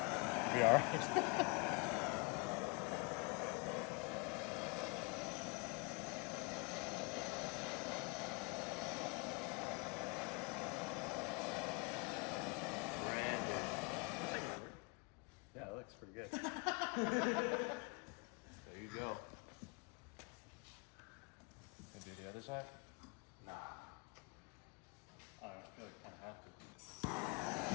be alright. Yeah, it looks pretty good. There you go. Can do the other side? Nah. I don't know, I feel like I kind of have to.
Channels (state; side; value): quieter; right; 30.7 dB